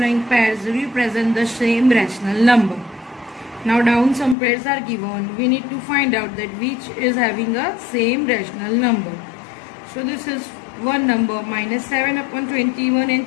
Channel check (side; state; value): right; drops out; at 4.4 s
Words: pairs represent the same rational number? Now down some pairs are given. We need to find out that which is having a same rational number. So this is one number minus 7 upon 21